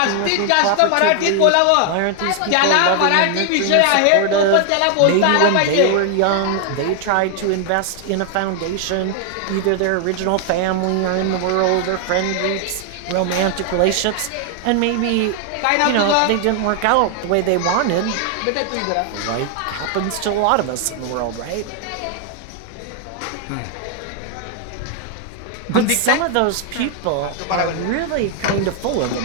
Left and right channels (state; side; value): different; both; correlation 0.00